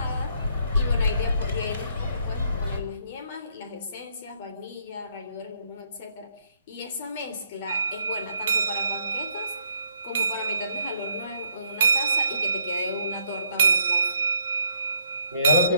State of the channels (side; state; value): both; inverted; correlation -0.70